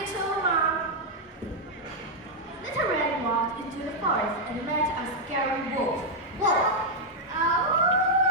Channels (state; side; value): normal; both; correlation -0.03